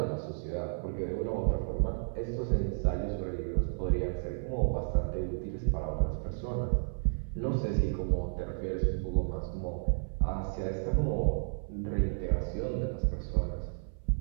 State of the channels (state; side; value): silent; left; 56 dB below the other